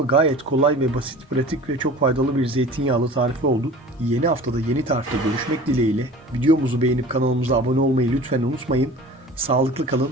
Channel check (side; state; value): both; normal; correlation 0.41